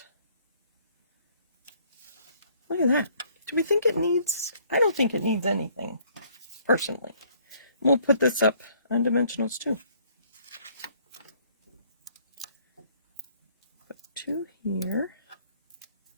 Look at that. Do we think it needs? I don't think it needs anything, personally. We'll put this up on dimensionals too. Put 2 here.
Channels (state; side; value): inverted; both; correlation -0.62